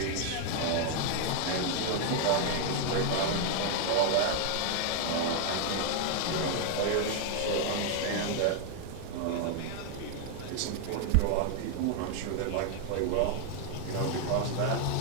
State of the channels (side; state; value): both; different; correlation 0.00